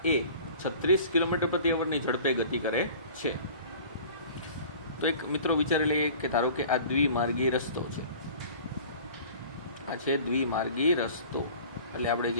એ 36 કિલોમીટર પ્રતિ અવરની ઝડપે ગતિ કરે છે. તો એક મિત્રો વિચારી લઈએ કે ધારો કે આ દ્વિમાર્ગી રસ્તો છે, આ છે દ્વિમાર્ગી રસ્તો, એટલે આપણે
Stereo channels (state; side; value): inverted; both; correlation -0.45